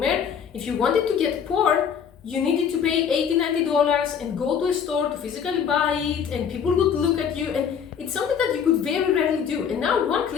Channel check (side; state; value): right; quieter; 7.5 dB